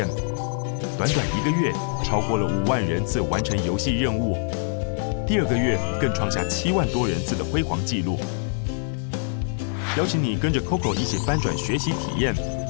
短短1个月，超过了5万人次完成游戏任务。第2个月更创下7万多人次的辉煌纪录。邀请你跟着 Coco 一起翻转学习体验，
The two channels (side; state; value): right; silent; digital silence